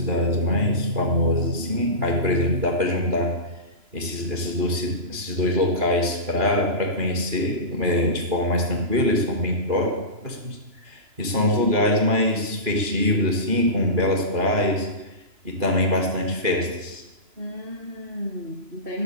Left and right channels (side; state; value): left; late; 2.9 ms